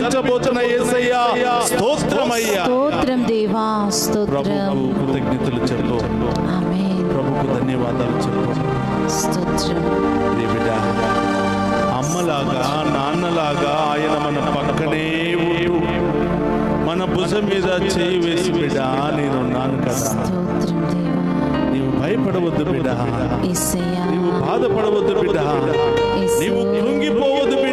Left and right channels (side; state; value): both; identical; correlation 1.00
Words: యేసయ్యా స్తోత్రమయ్యా. స్తోత్రం దేవా. స్తోత్రం. ప్రభువు కృతజ్ఞతలు చెప్పు. ఆమేన్. ప్రభుకు ధన్యవాదాలు చెప్పు. స్తోత్రం. బిడ్డ, అమ్మలాగా నాన్నలాగా ఆయన మన పక్కనే ఉంటూ మన భుజం మీద చేయి వేసి బిడ్డ నేనున్నాను కదా, స్తోత్రం దేవా. నీవు భయపడవద్దు బిడ్డ, యేసయ్యా. నీవు బాధపడవద్దు బిడ్డ, యేసు. నీవు కృంగిపోవద్దు